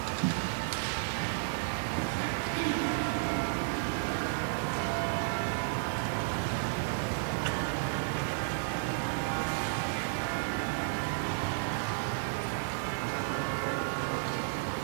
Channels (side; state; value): left; silent; digital silence